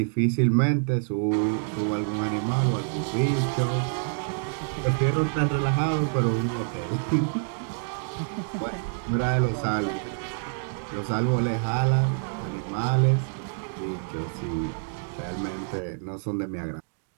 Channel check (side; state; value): left; silent; 60 dB below the other